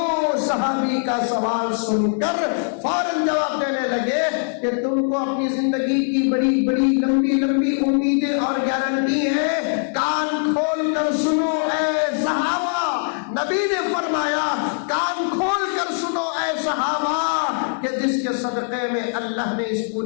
صحابی کا سوال سن کر فوراً جواب دینے لگے کہ تم کو اپنی زندگی کی بڑی بڑی لمبی لمبی امیدیں اور گارنٹی ہے. کان کھول کر سنو اے صحابہ. نبی نے فرمایا کان کھول کر سنو اے صحابہ کہ جس کے صدقے میں اللہ نے اس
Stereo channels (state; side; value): silent; right; 65 dB below the other